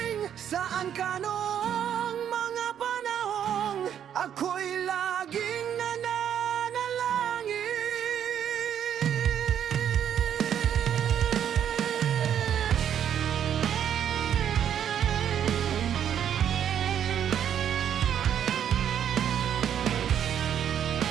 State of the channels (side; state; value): left; quieter; 9.3 dB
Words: Saan ka noong mga panahong ako'y laging nananalangin?